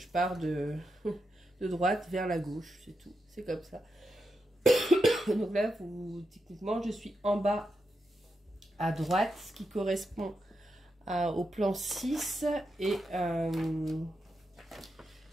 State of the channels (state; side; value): normal; both; correlation 0.86